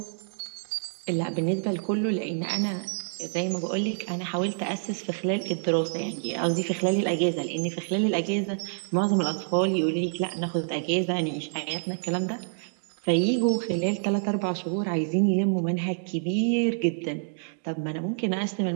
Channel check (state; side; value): silent; left; digital silence